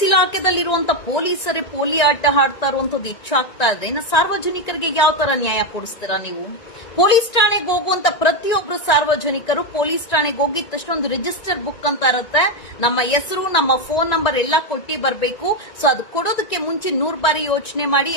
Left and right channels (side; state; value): right; late; 1.9 ms